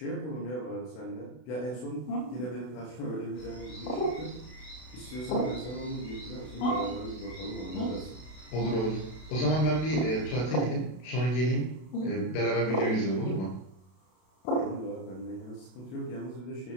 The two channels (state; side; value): late; right; 32 ms